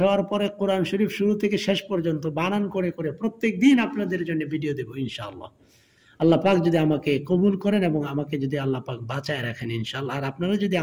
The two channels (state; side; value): identical; both; correlation 1.00